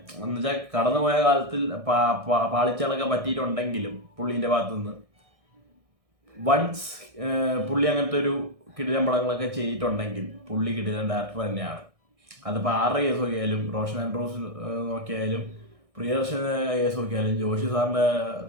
എന്ന് വെച്ചാൽ കടന്നുപോയ കാലത്തിൽ പാളിച്ചകളൊക്കെ പറ്റിയിട്ടുണ്ടെങ്കിലും പുള്ളീൻ്റെ ഭാഗത്തുനിന്ന് വൺസ് പുള്ളി അങ്ങനത്തെ ഒരു കിടിലൻ പടങ്ങളൊക്കെ ചെയ്തിട്ടുണ്ടെങ്കിൽ പുള്ളി കിടിലൻ ഡയറക്ടർ തന്നെയാണ്. അതിപ്പോൾ ആരുടെ കേസ് നോക്കിയാലും, റോഷൻ ആൻഡ്രൂസ് നോക്കിയാലും, പ്രിയദർശന കേസ് നോക്കിയാലും, ജോഷി സാറിൻ്റെ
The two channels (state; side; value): late; left; 1.6 ms